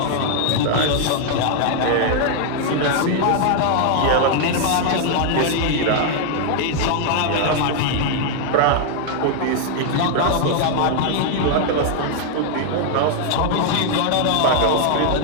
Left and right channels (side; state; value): both; different; correlation 0.00